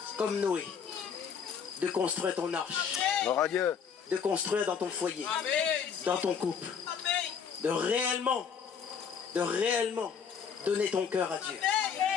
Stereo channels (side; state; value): right; quieter; 6.9 dB